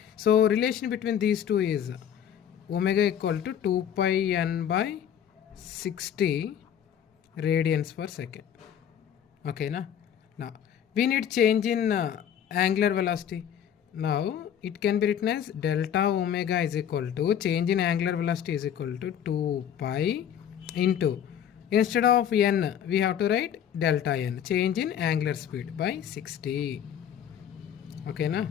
So relation between these two is omega equal to 2πn/60 radians per second. ఓకేనా? నా we need change in angular velocity. Now it can be written as delta omega is equal to change in angular velocity is equal to 2pi into, instead of n we have to write delta n, change in angular speed by 60. Okay na?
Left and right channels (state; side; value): quieter; right; 9.2 dB